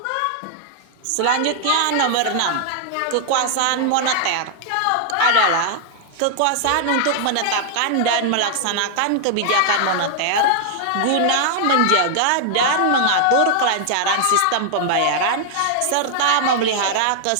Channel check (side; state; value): both; different; correlation -0.01